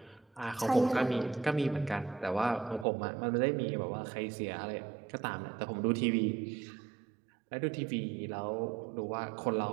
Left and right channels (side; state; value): left; drops out; at 2.9 s